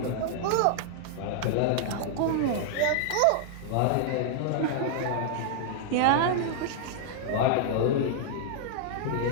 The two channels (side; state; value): both; different; correlation -0.01